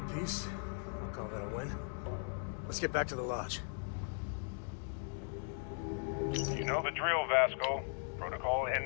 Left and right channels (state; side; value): silent; right; 52 dB below the other